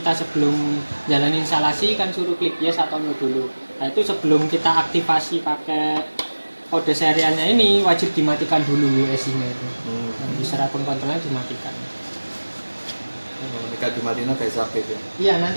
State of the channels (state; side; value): inverted; both; correlation -1.00